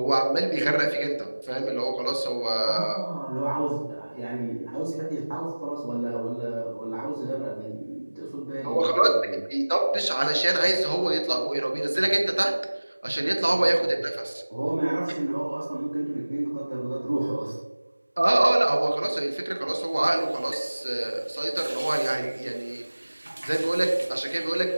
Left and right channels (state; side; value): inverted; both; correlation -1.00